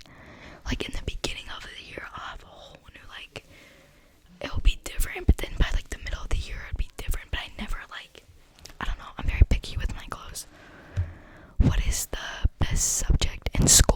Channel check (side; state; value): both; identical; correlation 1.00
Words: Like in the beginning of the year, I'll have a whole new like, it'll be different, but then by like the middle of the year it'll be different. But I never like, I don't know, I'm very picky with my clothes. What is the best subject in